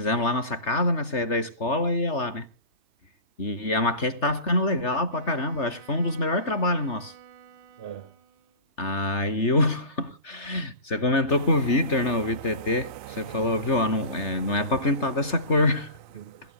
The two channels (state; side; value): late; right; 3.3 ms